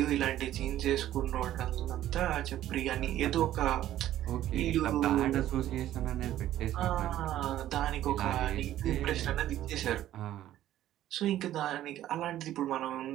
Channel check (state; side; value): quieter; left; 13.0 dB